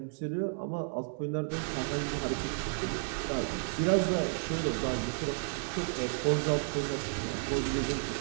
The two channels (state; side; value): silent; left; digital silence